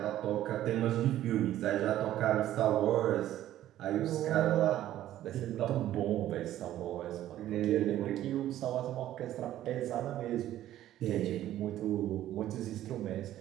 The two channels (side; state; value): left; quieter; 13.0 dB